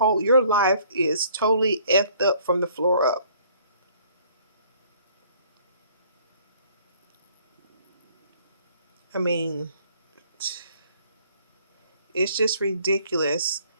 life is totally effed up from the floor up. I mean, it's just ridiculous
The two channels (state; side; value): inverted; both; correlation -0.59